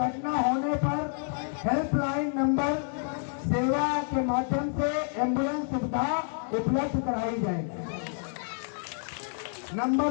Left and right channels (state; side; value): silent; right; 59 dB below the other